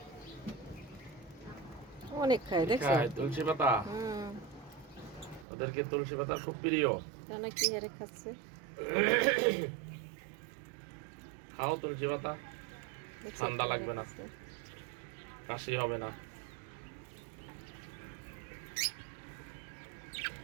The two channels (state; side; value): drops out; left; at 5.5 s